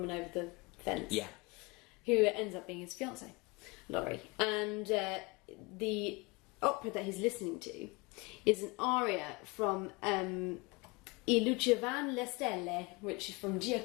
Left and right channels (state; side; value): quieter; right; 26.7 dB